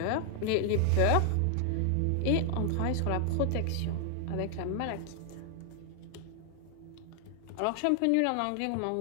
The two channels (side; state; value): both; different; correlation 0.00